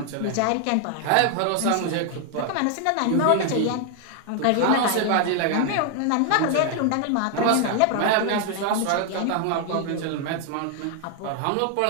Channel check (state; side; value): different; both; correlation 0.00